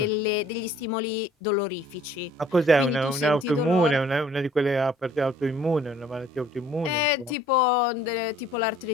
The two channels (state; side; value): normal; both; correlation 0.56